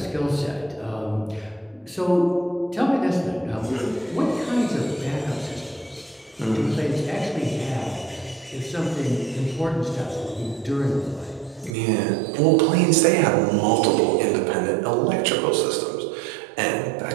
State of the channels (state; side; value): drops out; left; at 11.8 s